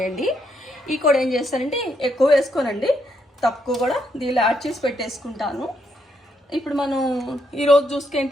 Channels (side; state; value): both; normal; correlation 0.76